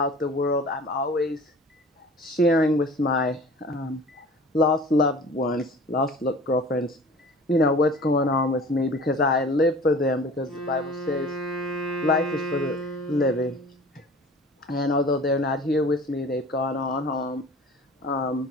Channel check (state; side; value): normal; both; correlation 0.43